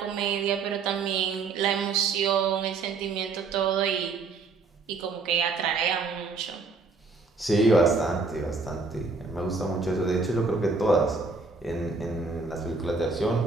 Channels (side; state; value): left; quieter; 4.2 dB